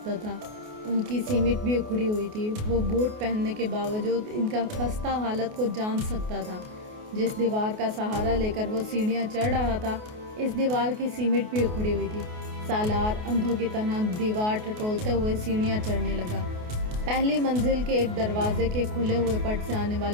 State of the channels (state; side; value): late; left; 28 ms